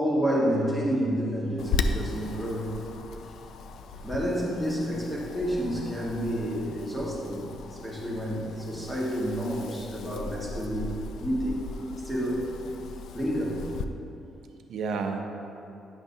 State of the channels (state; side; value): normal; both; correlation 0.76